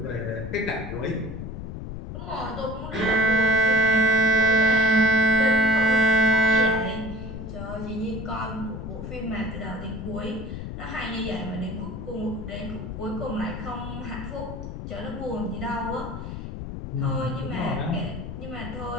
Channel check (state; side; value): noise; left; rumble, 8 dB below the sound